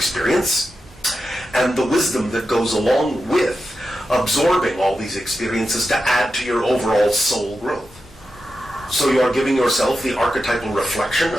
and the wisdom that goes along with absorbing all these experiences to add to your overall soul growth. So you are giving yourself the archetypal reflection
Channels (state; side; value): normal; both; correlation 0.90